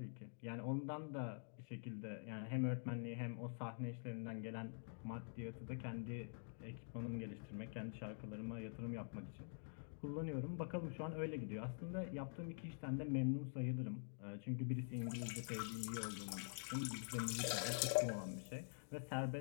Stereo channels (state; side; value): silent; right; digital silence